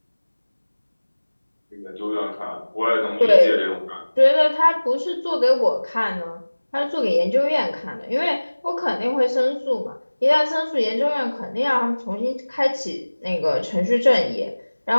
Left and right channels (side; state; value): both; inverted; correlation -1.00